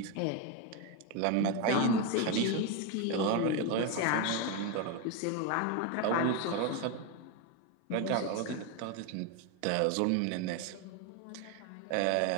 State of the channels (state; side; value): different; both; correlation 0.02